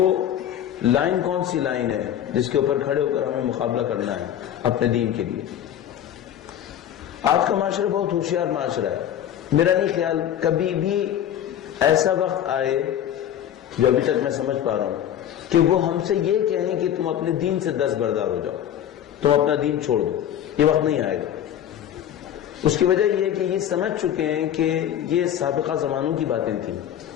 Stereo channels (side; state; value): right; quieter; 10.5 dB